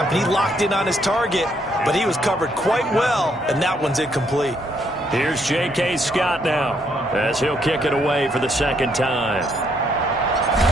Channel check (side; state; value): both; normal; correlation 0.72